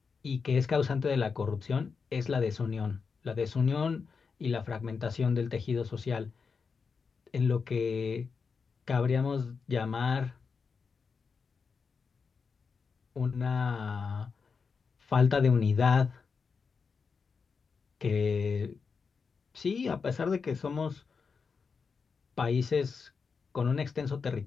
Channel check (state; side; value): quieter; right; 5.4 dB